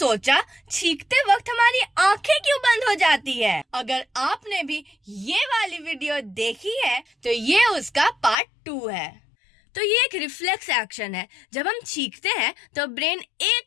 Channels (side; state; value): right; drops out; at 8.3 s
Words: छींकते वक्त हमारी आंखें क्यों बंद हो जाती है? अगर आपने भी ये वाली वीडियो देखी है तो ये उसका पार्ट 2 है। तो ये एक रिफ्लेक्स एक्शन है। जब हम छींकते हैं तो ब्रेन